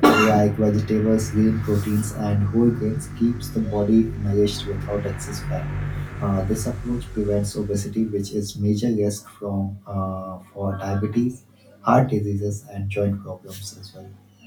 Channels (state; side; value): identical; both; correlation 1.00